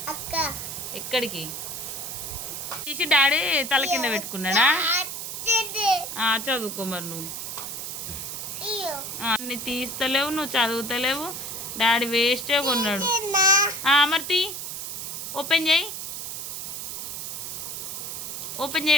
ఎక్కడికి తీసి డాడీ తల కింద పెట్టుకున్నాడా? చదువుకో మరి నువ్వు. అన్ని తీస్తలేవు, నువ్వు చదువుతలేవు. డాడీ వేస్టే కొన్నాడు. మరి తీ, ఓపెన్ చేయి. ఓపెన్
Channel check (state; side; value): noise; right; hiss, 6 dB below the sound